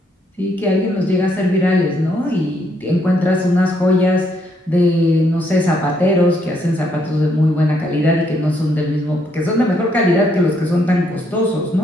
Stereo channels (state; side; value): normal; both; correlation 0.72